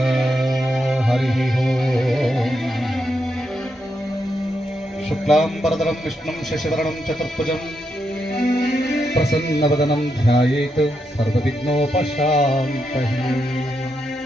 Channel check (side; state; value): both; normal; correlation 0.83